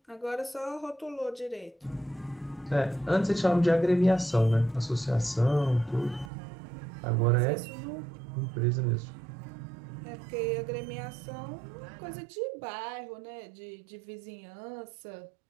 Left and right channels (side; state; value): left; drops out; at 6.3 s